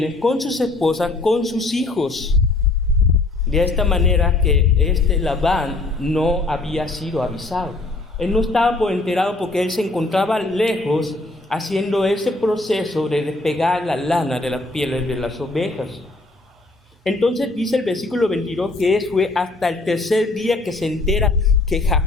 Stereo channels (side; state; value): right; quieter; 3.1 dB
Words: con sus esposas, con sus hijos. De esta manera que Labán no había sido avisado. Él no estaba por enterado porque él se encontraba lejos haciendo ese proceso de despegar la lana de las pieles de las ovejas. Entonces dice el versículo 22 que fue hasta el tercer día que se entera que